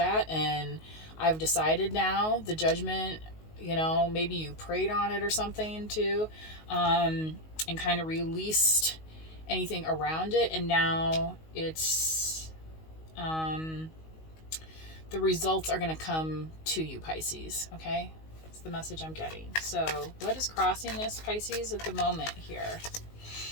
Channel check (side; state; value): right; late; 19 ms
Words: and I've decided now. The judgment, maybe you prayed on it or something too, and kind of released anything around it, and now it's the results are going to come to you, Pisces. Okay, that's the message I'm getting. So what is crossing this, Pisces, at the moment here?